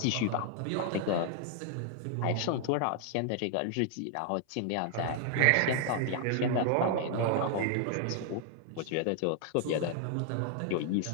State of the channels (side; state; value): both; different; correlation 0.00